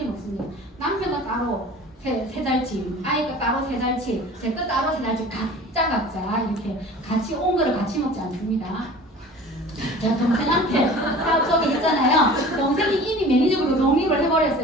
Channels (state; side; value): normal; both; correlation 0.42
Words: 먹습니다. 남편은 따로 세 달치, 아이가 따로 세 달치, 제 거 따로 세 달치 각자 이렇게 같이 온 거를 같이 먹지 않습니다. 제가 동생한테 사업 소개했잖아요. 동생이 이미 매니저로 독립을